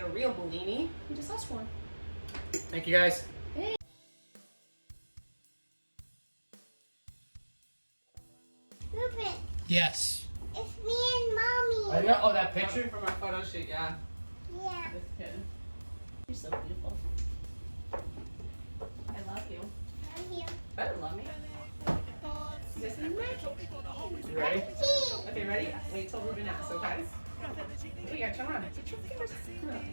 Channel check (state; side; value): inverted; both; correlation -1.00